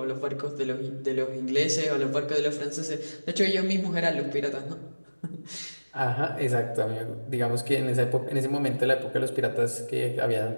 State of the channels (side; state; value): both; inverted; correlation -1.00